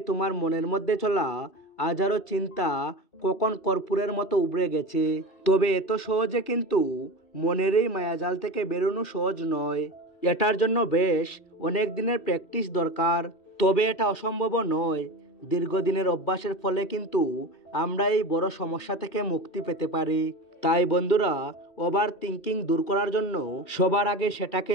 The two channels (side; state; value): right; late; 2.7 ms